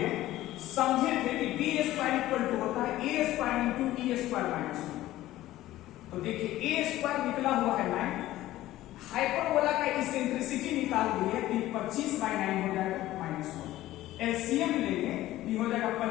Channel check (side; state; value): right; quieter; 15.3 dB